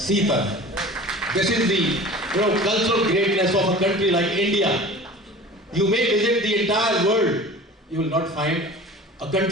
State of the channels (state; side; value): normal; both; correlation 0.40